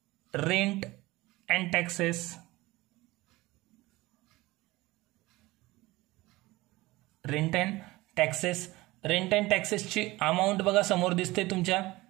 rent and taxes. Rent and taxes. Rent and टॅक्सेसची अमाऊंट बघा समोर दिसते तुमच्या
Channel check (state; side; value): quieter; left; 20.0 dB